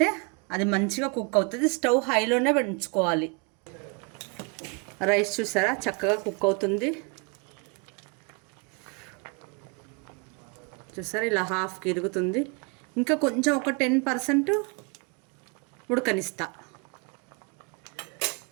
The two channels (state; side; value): quieter; left; 31.9 dB